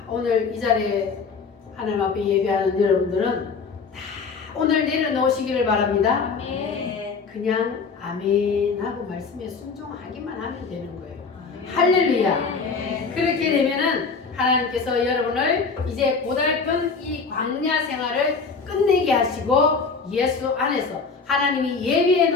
오늘 이 자리에 하나님 앞에 예배하는 여러분들은 다 오늘 내려놓으시기를 바랍니다. 그냥 아멘 하고 말씀에 순종하기만 하면 되는 거예요. 할렐루야. 그렇게 되면은 하나님께서 여러분을 이제 고달픈 이 광야 생활을 끝내게 하시고 예수 안에서 하나님이 예비해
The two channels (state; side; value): quieter; right; 4.9 dB